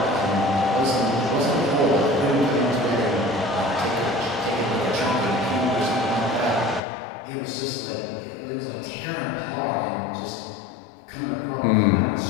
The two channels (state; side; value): drops out; right; at 6.8 s